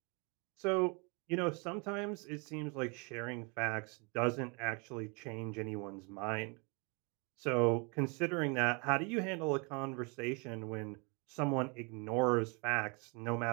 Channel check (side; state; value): left; quieter; 32.0 dB